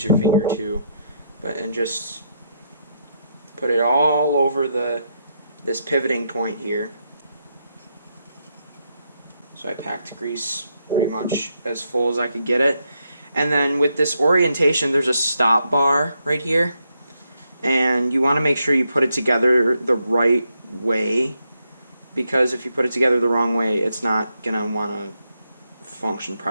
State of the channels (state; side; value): inverted; both; correlation -0.79